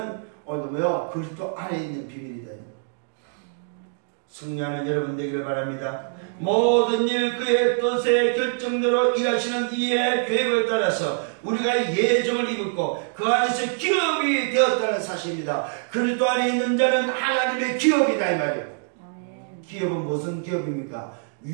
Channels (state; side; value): silent; left; digital silence